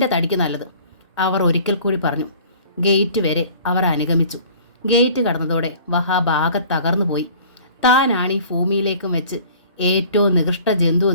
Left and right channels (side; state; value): both; inverted; correlation -0.49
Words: തടിക്ക് നല്ലത്, അവർ ഒരിക്കൽ കൂടി പറഞ്ഞു. ഗേറ്റ് വരെ അവർ അനുഗമിച്ചു. ഗേറ്റ് കടന്നതോടെ വഹാബ് ആകെ തകർന്നു പോയി. താനാണ് ഈ ഭൂമിയിലേക്കും വെച്ച് ഏറ്റവും നികൃഷ്ട ജന്തു